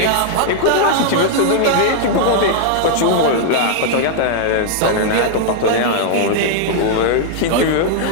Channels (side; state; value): both; different; correlation -0.01